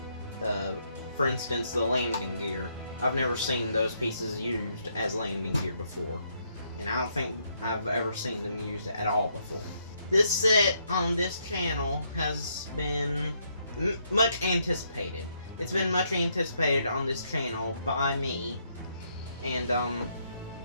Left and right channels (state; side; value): inverted; both; correlation -0.74